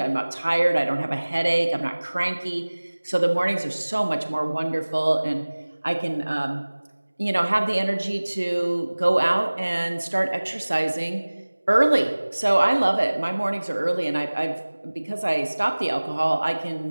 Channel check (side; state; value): both; inverted; correlation -1.00